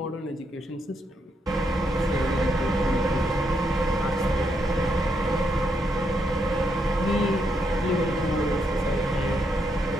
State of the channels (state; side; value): normal; both; correlation 0.79